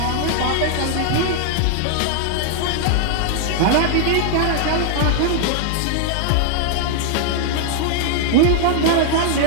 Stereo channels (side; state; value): both; different; correlation 0.00